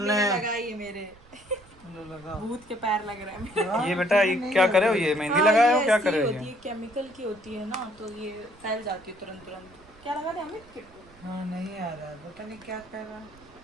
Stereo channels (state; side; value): noise; right; rumble, 26 dB below the sound